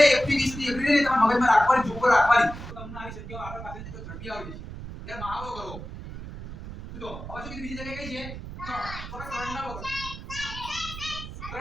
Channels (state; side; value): noise; right; rumble, 11 dB below the sound